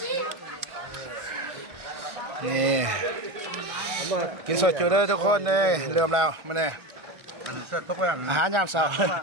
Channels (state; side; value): late; left; 1.6 ms